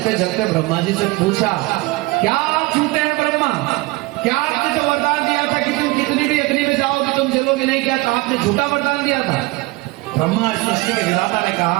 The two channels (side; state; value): left; quieter; 21.8 dB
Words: जलते ब्रह्मा जी से पूछा, क्या आप झूठे हैं ब्रह्मा? क्या आपने जो वरदान दिया था कि तुम कितनी भी अग्नि में जाओगे तुम जलोगे नहीं, क्या था आपने झूठा वरदान दिया था? ब्रह्मा सृष्टि के विधाता ने